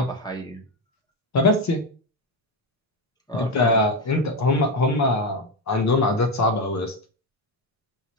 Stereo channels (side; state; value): both; normal; correlation 0.11